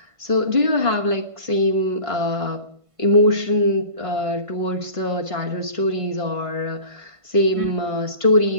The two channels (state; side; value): late; left; 1.5 ms